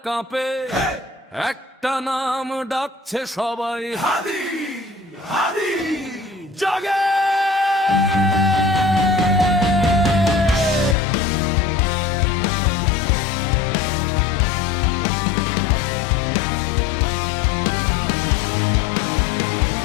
কাঁপে, একটা নাম ডাকছে সবাই, হাদি হাদি জাগে।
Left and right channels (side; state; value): right; drops out; at 11.0 s